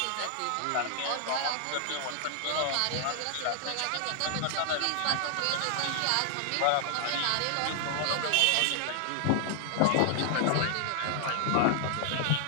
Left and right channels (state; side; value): different; both; correlation -0.01